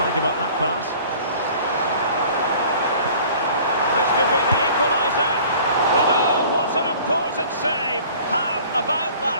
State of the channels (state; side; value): inverted; both; correlation -0.48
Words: about that pass? This could be the equaliser. But oh, what an important save! How about